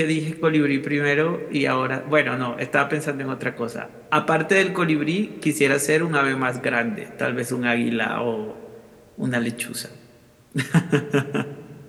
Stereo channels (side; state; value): both; identical; correlation 1.00